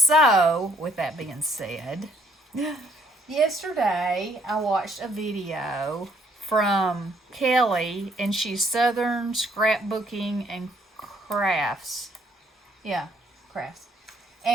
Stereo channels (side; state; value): both; normal; correlation 0.67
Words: with that being said, yesterday I watched a video from Kelley, and she's Southern Scrapbooking and Crafts. Yeah, crafts.